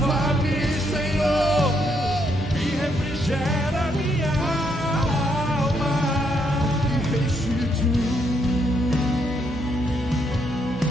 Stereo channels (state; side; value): normal; both; correlation 0.75